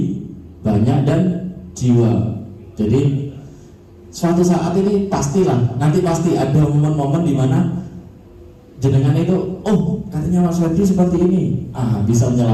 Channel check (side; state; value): both; identical; correlation 1.00